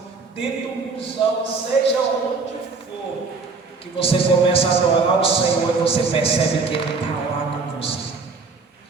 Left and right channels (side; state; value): left; quieter; 4.3 dB